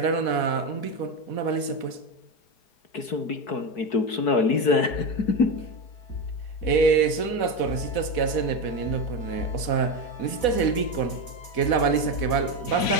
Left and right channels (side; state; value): right; late; 4.1 ms